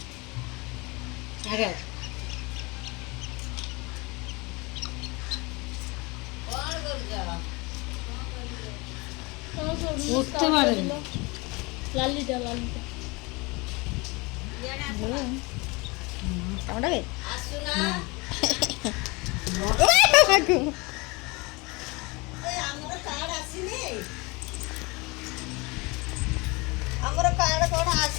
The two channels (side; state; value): right; quieter; 26.1 dB